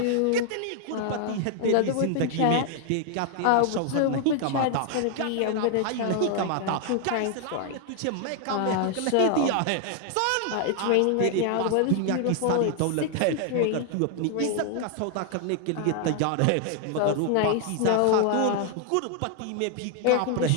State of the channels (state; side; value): different; both; correlation 0.00